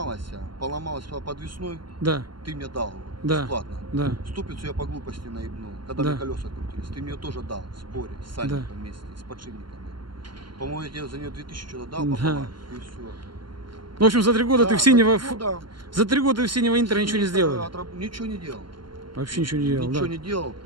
поломалось подвесной, Да, ты мне дал Да. бесплатно. да. Ступицу я по глупости наебнул, когда Да. мне колеса крутились. Ты мне тоже дал в сборе с сальником вместе, с подшипниками. По-моему, я тебе за нее 2000 что-то дал Да. пополам, и все. Ну, в общем, за 3 года ты в синего... Ну, да. За 3 года ты в синего Интера ничего не сделал. Ничего не делал. Вообще ничего не делал, Ничего да. не делал.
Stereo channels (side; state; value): left; late; 0.72 ms